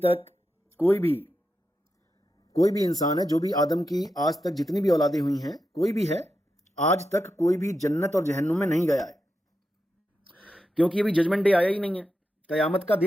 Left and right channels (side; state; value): both; normal; correlation 0.88